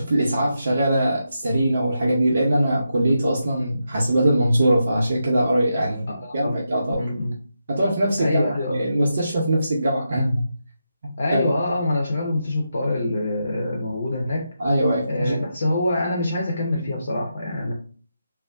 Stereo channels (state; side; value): inverted; both; correlation -0.85